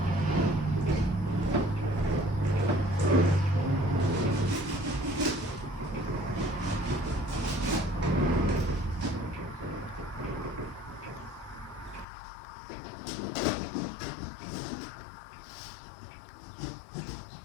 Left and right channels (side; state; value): right; drops out; at 12.1 s